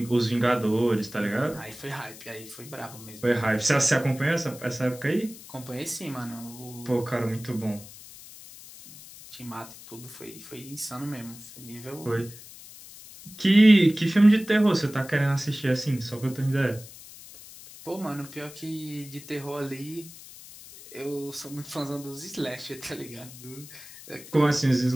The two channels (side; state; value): left; noise; hiss, 17 dB below the sound